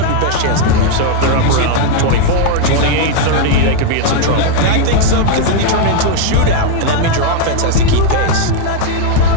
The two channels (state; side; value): different; both; correlation 0.01